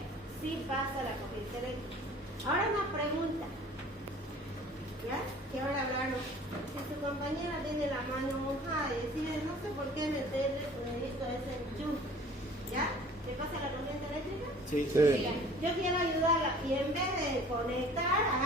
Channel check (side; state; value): both; normal; correlation 0.49